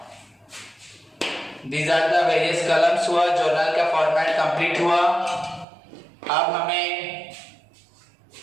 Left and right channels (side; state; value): left; drops out; at 5.7 s